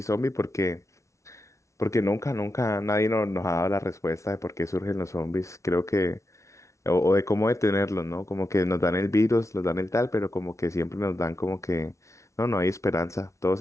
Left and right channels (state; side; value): late; right; 0.14 ms